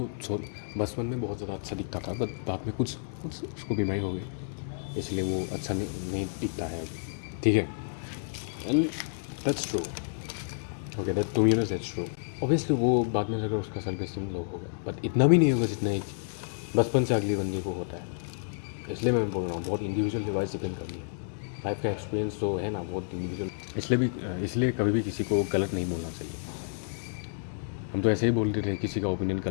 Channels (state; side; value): silent; right; digital silence